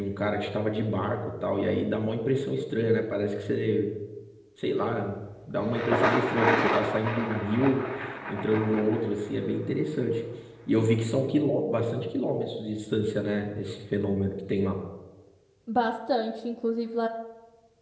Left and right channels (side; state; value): both; identical; correlation 1.00